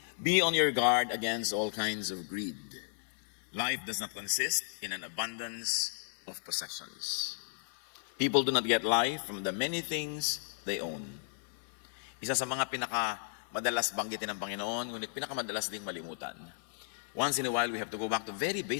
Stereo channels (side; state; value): right; silent; 55 dB below the other